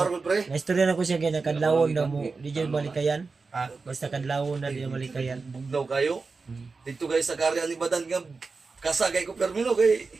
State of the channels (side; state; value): left; quieter; 4.3 dB